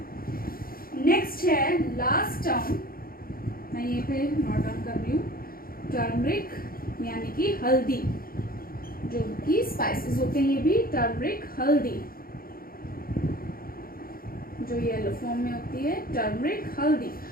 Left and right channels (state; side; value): late; right; 0.42 ms